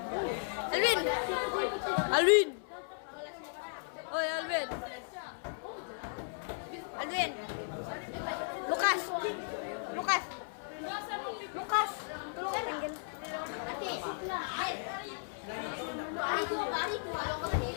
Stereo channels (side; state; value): right; silent; 54 dB below the other